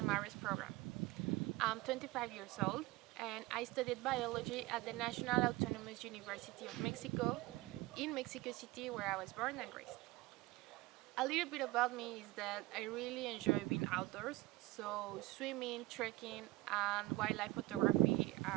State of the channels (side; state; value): left; quieter; 20.0 dB